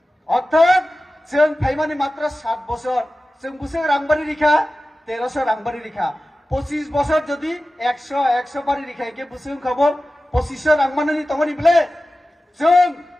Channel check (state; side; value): normal; both; correlation 0.95